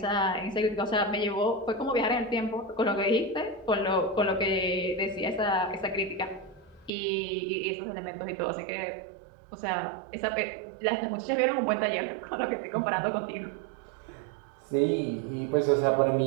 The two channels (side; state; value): left; drops out; at 6.9 s